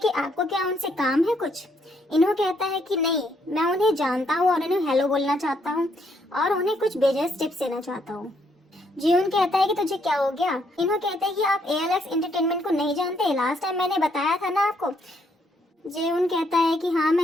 आपको क्या उनसे काम है कुछ। इन्हू कहता है कि नहीं, मैं उन्हें जानता हूँ और उन्हें हेलो बोलना चाहता हूँ और उन्हें कुछ बिजनेस टिप्स देना चाहता हूँ। जीवन कहता है कि तुझे क्या हो गया। इन्हों कहते हैं कि आप ALX एंटरटेनमेंट को नहीं जानते, लास्ट टाइम मैंने बताया था ना आपको। जेउन कहता है कि हाँ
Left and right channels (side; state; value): both; normal; correlation 0.72